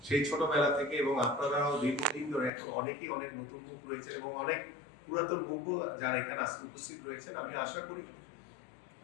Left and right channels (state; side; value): drops out; right; at 2.5 s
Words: সেই ছোটবেলা থেকে এবং আপনারাও দীর্ঘদিন ধরে এখন অনেকেই অনেক নতুন মুখ রয়েছেন এবং অনেক পুরাতন মুখ যারা এখানে আজকে উপস্থিত রয়েছেন। আমি আশা করি